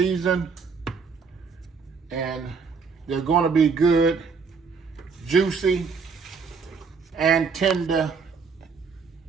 and they're going to be good, juicy, and tender.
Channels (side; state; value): left; quieter; 5.3 dB